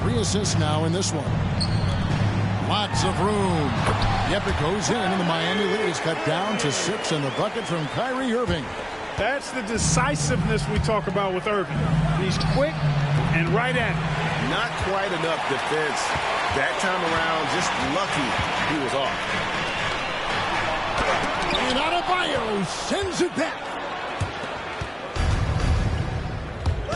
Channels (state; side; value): identical; both; correlation 1.00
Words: 3 assists now in this one. Lots of room. Yep, it goes in, and the Miami lead is cut down to 6, and the bucket from Kyrie Irving. That's the decisiveness we talk about with Irving. He's quick and right at it. Not quite enough defense that time around. Just lucky he was off. And Adebayo sends it back.